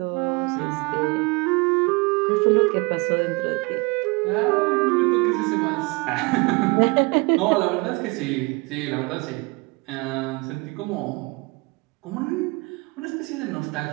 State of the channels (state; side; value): quieter; left; 27.3 dB